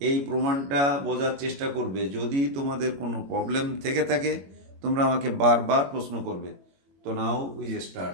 এই প্রমাণটা বোঝার চেষ্টা করবে। যদি তোমাদের কোনো প্রবলেম থেকে থাকে তোমরা আমাকে বারবার প্রশ্ন করবে। তো নাও উই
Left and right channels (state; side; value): late; left; 22 ms